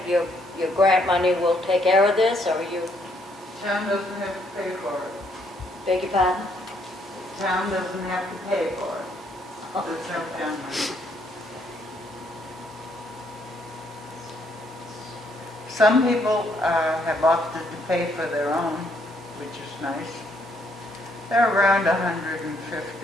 your grant money will take care of this, or you, Town doesn't have to pay for it. beg your pardon? Town doesn't have to pay for it. There's no town money. Some people have opted to pay for their own, which is nice. They're around $150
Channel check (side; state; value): both; normal; correlation 0.70